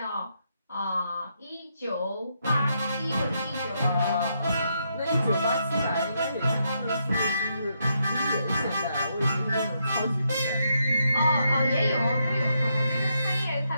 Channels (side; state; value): both; inverted; correlation -0.79